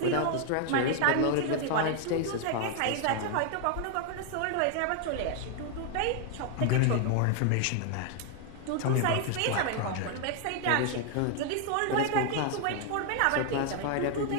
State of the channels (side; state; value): both; different; correlation 0.00